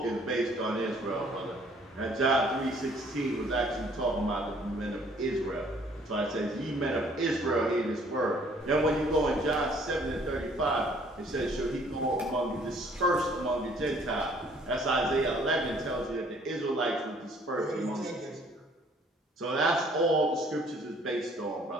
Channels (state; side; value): normal; both; correlation 0.59